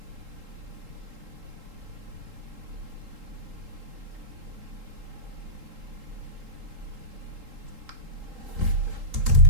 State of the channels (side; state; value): left; late; 3.8 ms